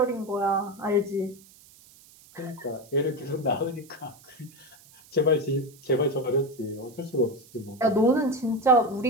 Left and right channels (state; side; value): noise; right; hiss, 25 dB below the sound